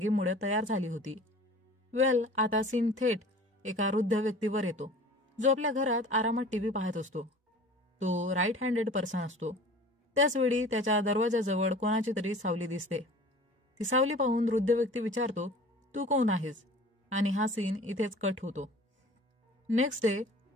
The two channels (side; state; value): both; normal; correlation 0.44